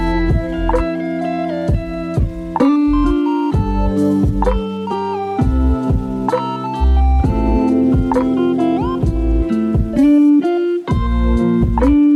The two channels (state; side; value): identical; both; correlation 1.00